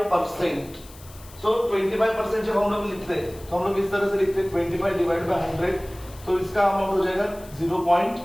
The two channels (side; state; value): left; noise; hiss, 21 dB below the sound